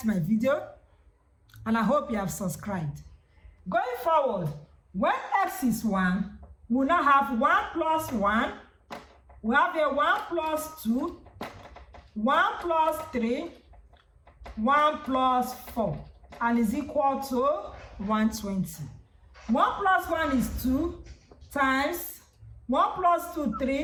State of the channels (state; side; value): identical; both; correlation 1.00